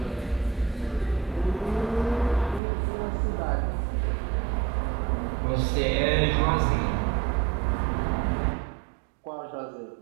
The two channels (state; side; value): drops out; left; at 2.6 s